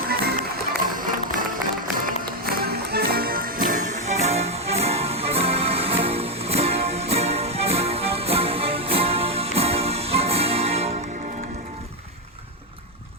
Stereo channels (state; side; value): normal; both; correlation 0.04